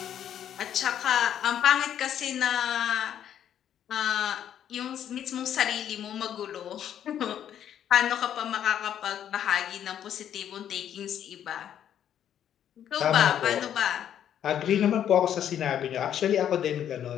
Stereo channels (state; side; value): quieter; right; 9.9 dB